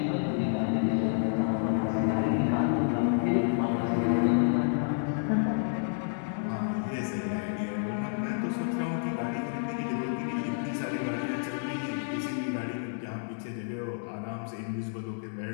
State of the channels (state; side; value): silent; right; 58 dB below the other